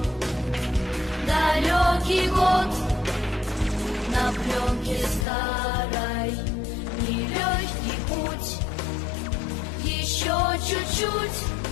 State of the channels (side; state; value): right; drops out; at 5.2 s